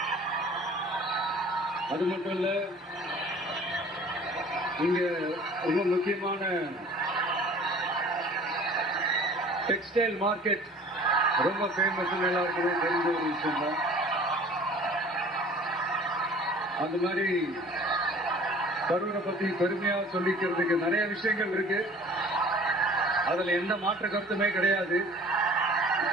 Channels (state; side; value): normal; both; correlation 0.48